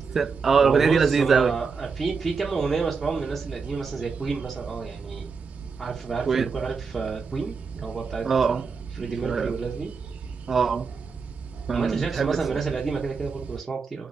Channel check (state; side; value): quieter; left; 5.2 dB